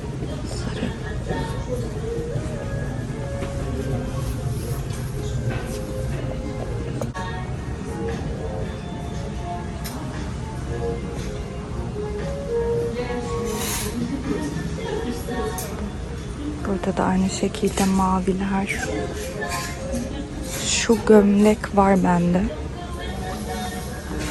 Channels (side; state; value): both; identical; correlation 1.00